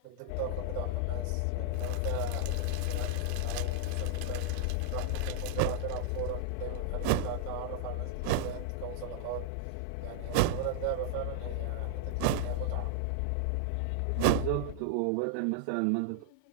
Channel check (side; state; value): both; different; correlation -0.01